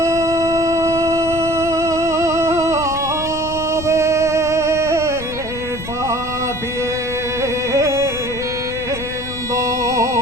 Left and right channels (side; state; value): left; noise; rumble, 12 dB below the sound